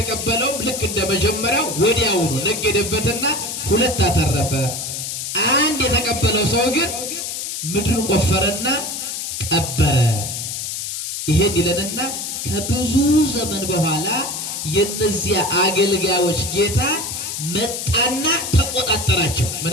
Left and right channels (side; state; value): left; noise; hiss, 5 dB below the sound